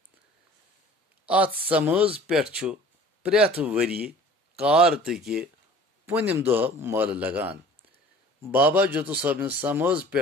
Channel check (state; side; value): normal; both; correlation 0.47